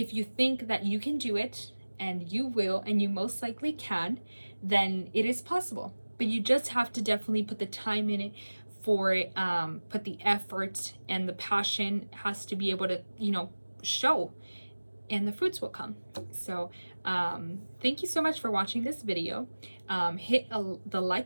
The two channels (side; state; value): both; inverted; correlation -1.00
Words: you think that you can do it, and you will, and you most likely can, then it is possible. But you just have to definitely put the time in it for it, put the effort, and the passion has to be able to, show, and the fruits will come. So thank you so much for watching this video. Hit the